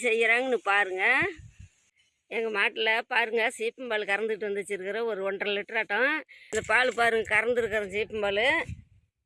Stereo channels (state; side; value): identical; both; correlation 1.00